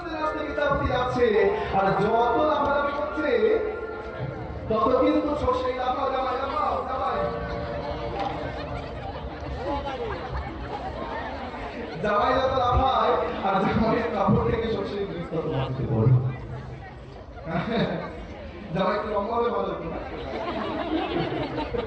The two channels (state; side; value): identical; both; correlation 1.00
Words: নাচতে বিদ্যাপতি যাচ্ছে, আর যত লাফালাফি করছে তত কিন্তু সর্ষেই লাফাও, জামাই লাফাও, জামাই জামাই যত লাফায়, আর জামাইয়ের কাপড় থেকে সর্ষের বীজ তত মাটিতে পড়ে। জামাই একটু লম্বা হবে ভালো হতো না?